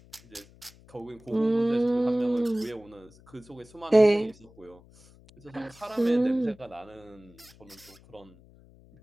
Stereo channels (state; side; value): noise; left; hum, 25 dB below the sound